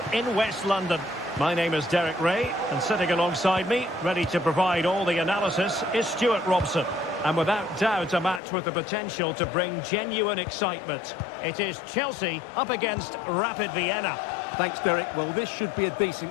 in West London. My name is Derek Ray, and sitting alongside me, ready to provide all the analysis, is Stuart Robson. And without doubt, a match with the potential to bring genuine excitement. It is Chelsea up against Rapid Vienna. Thanks, Derek. Well, this should be a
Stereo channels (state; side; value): drops out; right; at 8.4 s